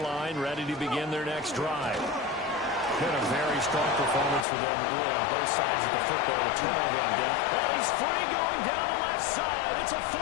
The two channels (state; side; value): drops out; right; at 4.5 s